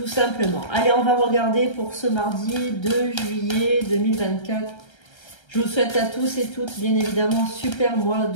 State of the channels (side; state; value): right; late; 1.3 ms